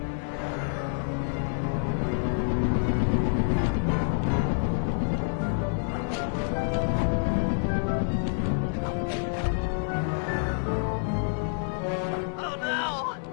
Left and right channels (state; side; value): silent; right; 60 dB below the other